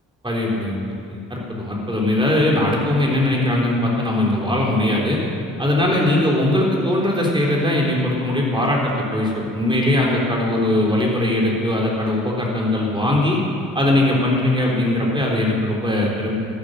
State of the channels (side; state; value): both; normal; correlation 0.55